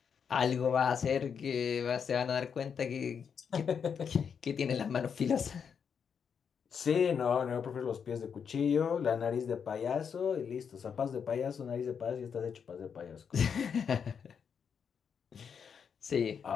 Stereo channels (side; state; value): right; quieter; 6.9 dB